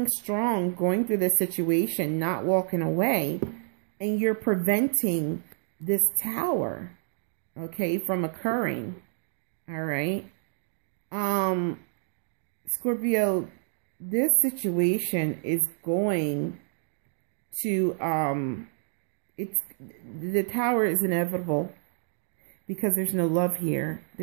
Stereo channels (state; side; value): silent; left; digital silence